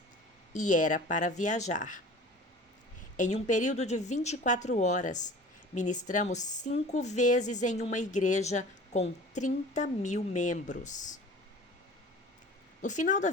e era para viajar. Em um período de 24 horas, ministramos 5 vezes em uma igreja com 30.000 membros. No final da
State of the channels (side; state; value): both; normal; correlation 0.42